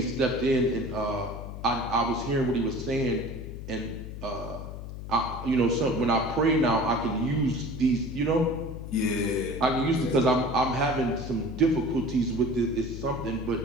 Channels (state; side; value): noise; left; hum, 9 dB below the sound